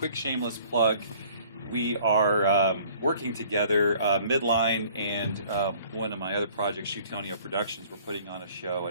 shameless plug. We are working together, Midline and one of my other projects, Shootonio Productions. We're putting on a show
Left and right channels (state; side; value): inverted; both; correlation -0.55